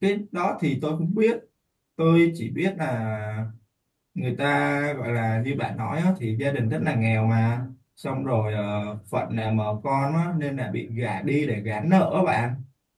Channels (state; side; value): identical; both; correlation 1.00